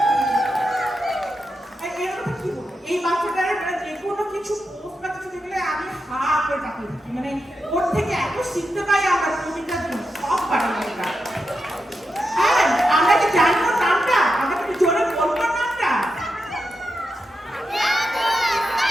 এই বাচ্চাটার যে কোনো কিছু পোস্ট বা কিছু দেখলে আমি হা করে তাকিয়ে থাকি, মানে ওর থেকে এত শিখতে পাই আমরা প্রতিটা দিন, সব পারি আমরা। হ্যাঁ, আমরা কি জানি ওর নামটা? আমরা কি জোরে বলবো নামটা?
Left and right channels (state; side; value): normal; both; correlation 0.87